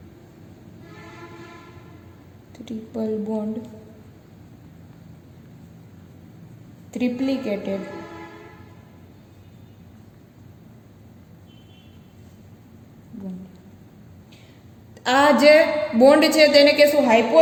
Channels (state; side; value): identical; both; correlation 1.00